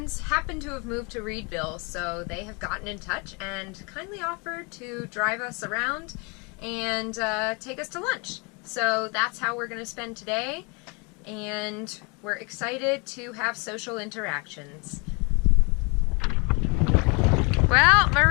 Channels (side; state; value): right; quieter; 31.1 dB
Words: happen to have moved to Reedville, so they have gotten in touch and kindly offered to drive us around and take us to lunch. So that's how we're going to spend today, and we're excited to have social interactions. Well,